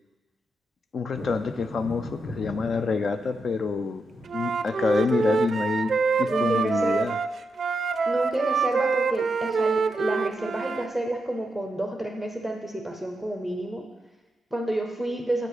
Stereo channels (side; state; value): both; normal; correlation 0.85